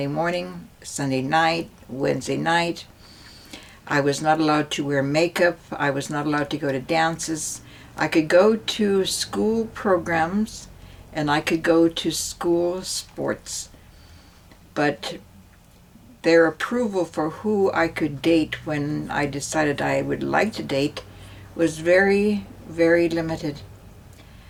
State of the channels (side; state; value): both; identical; correlation 1.00